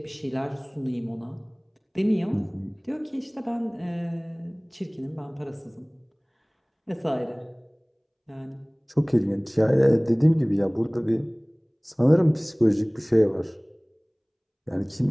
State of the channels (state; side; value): identical; both; correlation 1.00